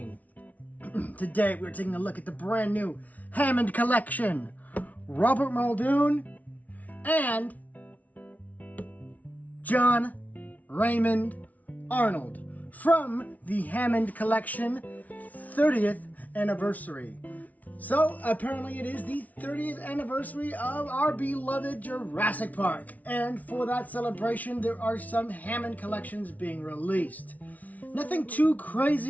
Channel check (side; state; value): right; late; 0.073 ms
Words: Today we're taking a look at the brand new Hammond Collection. Robert Muldoon and John Raymond Arnold from the Hammond Collection 30th anniversary. So, apparently it is the 30th anniversary of our beloved Jurassic Park. And for that celebration, there are some Hammond collections being released. Nothing too